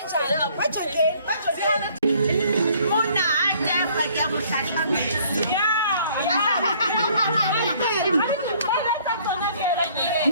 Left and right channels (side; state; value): both; inverted; correlation -0.59